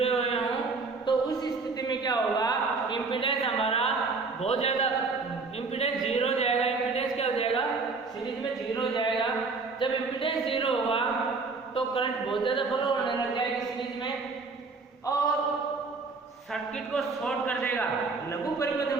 हुए हों। तो उस स्थिति में क्या होगा, इंपीडेंस हमारा बहुत ज्यादा, इंपीडेंस 0 हो जाएगा। इंपीडेंस क्या हो जाएगा, सीरीज में 0 हो जाएगा। जब इंपीडेंस 0 होगा तो करंट बहुत ज्यादा फ्लो होने लग जाएगी सीरीज में और सर्किट को शॉर्ट कर देगा, लघु परिपथ में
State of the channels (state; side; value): quieter; left; 4.2 dB